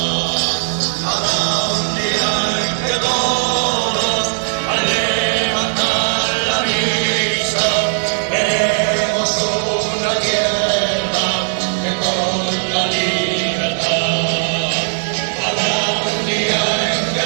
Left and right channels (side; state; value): left; silent; digital silence